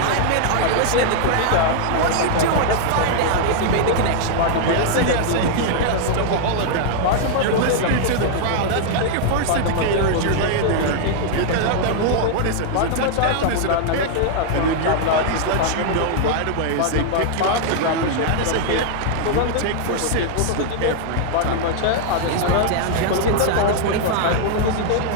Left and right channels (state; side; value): different; both; correlation -0.01